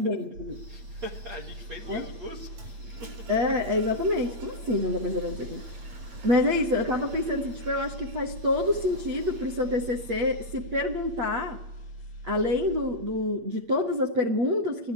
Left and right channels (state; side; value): late; left; 8.7 ms